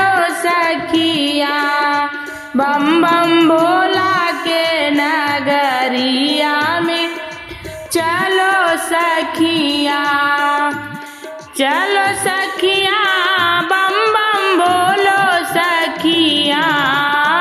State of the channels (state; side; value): identical; both; correlation 1.00